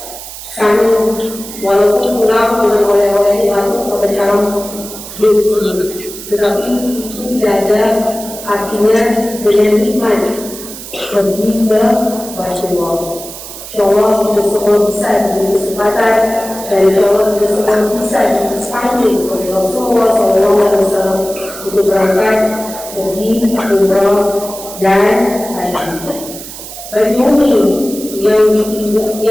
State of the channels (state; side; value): noise; right; hiss, 12 dB below the sound